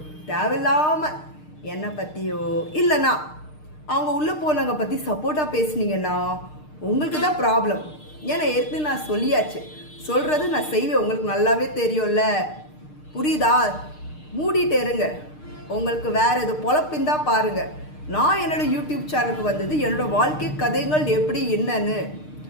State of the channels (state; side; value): late; right; 6.6 ms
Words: தேவையில்லாமல் என்னை பற்றியோ இல்லைன்னா அவங்க உள்ளே போனவங்க பற்றி சப்போர்ட்டாக பேசுனீங்கன்னா உங்களுக்கு தான் ப்ராப்ளம். ஏன்னா ஏற்கனவே நான் சொல்லியாச்சு, சொல்கிறது நான் செய்வேன், உங்களுக்கு நல்லாவே தெரியும்ல, புரியுதா? மூடிட்டு இருங்க. உங்களுக்கு வேறு எது பொழப்பிந்தா பாருங்கள். நான் என்னோட யூடியூப் சேனலுக்கு வந்தது என்னோட வாழ்க்கை கதைகள் எப்படி என்னன்னு.